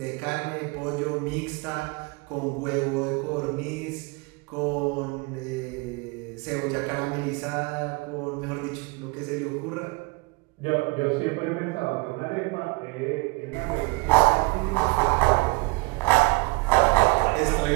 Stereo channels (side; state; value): left; quieter; 26.8 dB